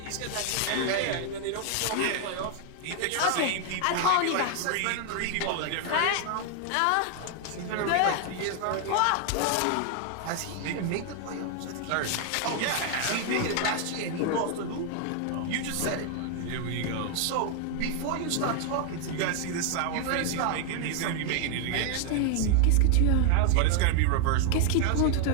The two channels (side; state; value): both; different; correlation 0.00